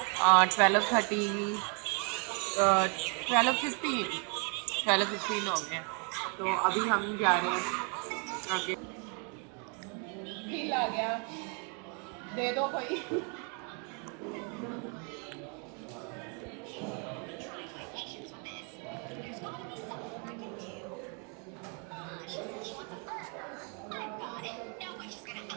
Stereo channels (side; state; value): left; quieter; 36.9 dB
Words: 12:30, 12:15 हो गए हैं। तो अभी हम जा रहे हैं आगे। बिल आ गया, दे दो कोई।